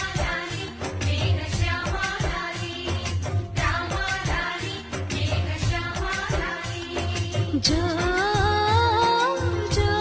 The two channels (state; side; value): identical; both; correlation 1.00